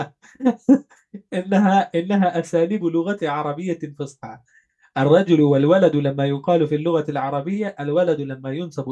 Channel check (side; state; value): both; identical; correlation 1.00